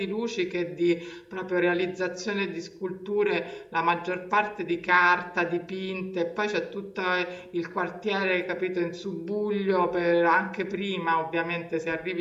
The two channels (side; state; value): both; identical; correlation 1.00